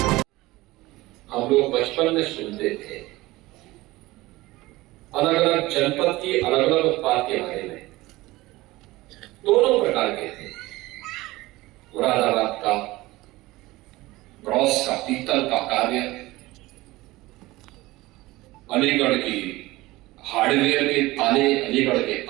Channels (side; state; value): left; quieter; 19.3 dB